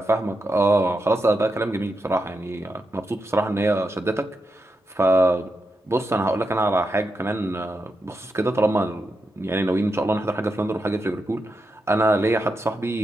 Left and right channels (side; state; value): both; normal; correlation 0.86